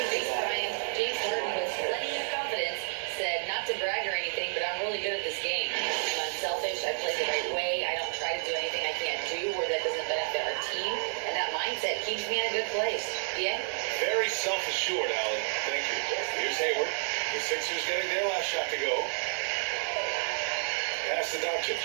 Thanks, Brian. James Harden with plenty of confidence said not to brag or anything, but I'm really good at this game. I'm unselfish. I play the right way. I don't try to do anything I can't do or that doesn't benefit our team. And that mindset keeps me in a good place. Yeah? Very self-assured, Allie. Thank you. Here's Hayward. The Sixers getting their last shot to go. Pass to Doncic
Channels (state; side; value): silent; left; digital silence